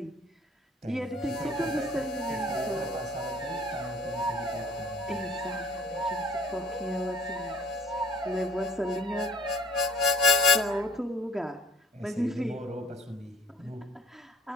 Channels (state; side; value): normal; both; correlation 0.52